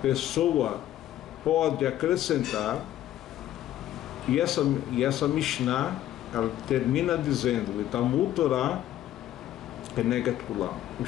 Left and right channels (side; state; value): right; quieter; 12.8 dB